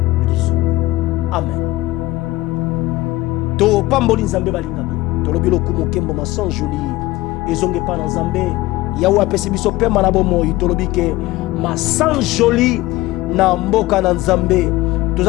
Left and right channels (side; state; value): right; quieter; 18.3 dB